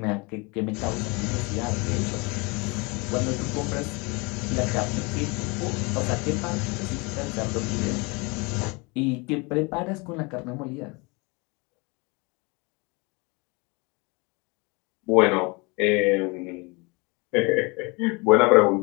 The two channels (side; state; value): right; quieter; 28.1 dB